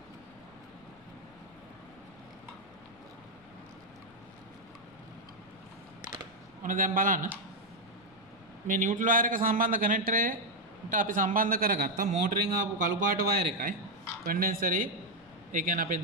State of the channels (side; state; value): left; noise; rumble, 29 dB below the sound